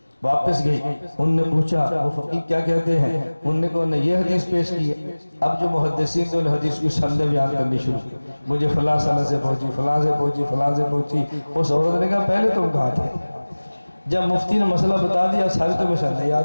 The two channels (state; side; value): inverted; both; correlation -1.00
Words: واپس گئی، ان نے پوچھا وہ فقیہ کیا کہتے ہیں؟ ان نے کہا یہ حدیث پیش کی ہے۔ اب جو محدثین تھے ان حدیث کی سندیں بیان کرنی شروع کی، مجھے فلاں سند سے پہنچی، فلاں سے پہنچی، فلاں سے پہنچی۔ اس عورت نے کہا پہلے تم کہاں تھے؟ جب مفتی نے مسئلہ بتا دیا ساری تمہیں سندیں